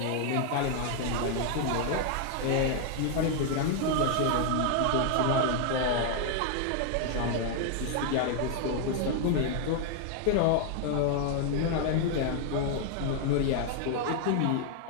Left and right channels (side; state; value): both; different; correlation 0.00